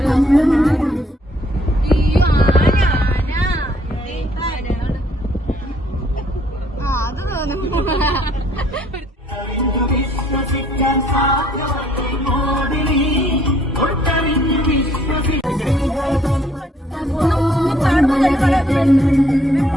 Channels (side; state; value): both; normal; correlation 0.64